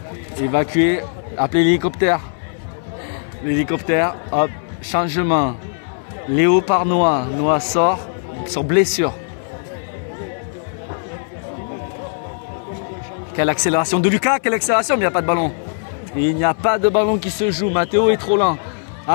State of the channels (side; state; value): right; silent; 63 dB below the other